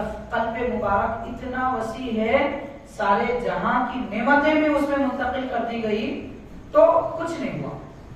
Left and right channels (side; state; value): both; identical; correlation 1.00